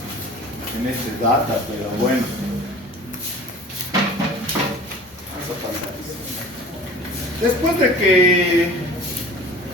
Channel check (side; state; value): both; normal; correlation 0.43